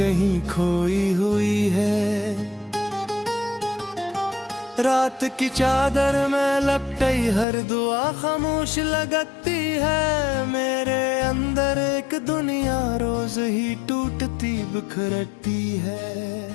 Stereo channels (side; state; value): right; drops out; at 7.5 s